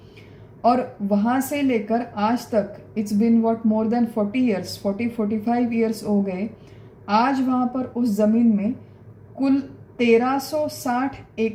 और वहाँ से लेकर आज तक it's been what more than 45 years हो गए। आज वहाँ पर उस ज़मीन में कुल 1360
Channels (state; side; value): identical; both; correlation 1.00